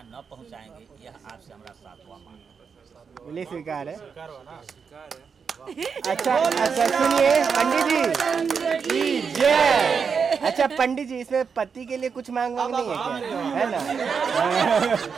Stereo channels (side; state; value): left; quieter; 6.0 dB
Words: न पहुंचाएंगे, यह आपसे हमारा सातवां मांग है। बोलिए स्वीकार है। स्वीकार हुआ ना? स्वीकार अच्छा है। अच्छा, सुनिए पंडित जी, जय। अच्छा पंडित जी, इसमें पति के लिए कुछ मांग नहीं है क्या? है ना?